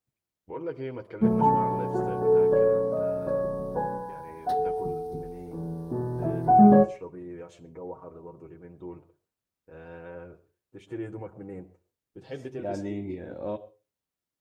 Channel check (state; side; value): identical; both; correlation 1.00